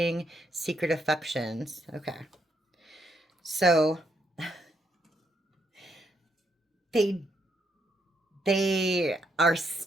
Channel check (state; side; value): normal; both; correlation 0.75